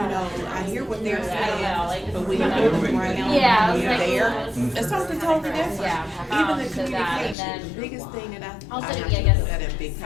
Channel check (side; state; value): right; drops out; at 7.4 s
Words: I hear what they're saying, but when you're around, when you're there, it's something totally different. Even the communication, the biggest thing that I have to put that in big